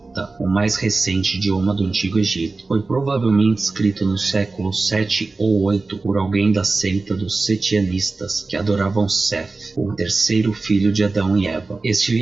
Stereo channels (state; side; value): quieter; left; 3.6 dB